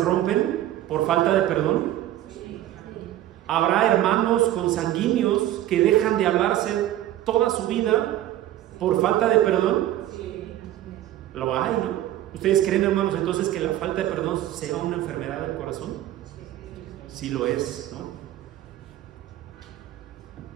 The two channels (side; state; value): left; quieter; 13.4 dB